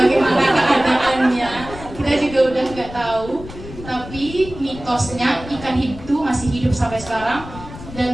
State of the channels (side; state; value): left; noise; rumble, 14 dB below the sound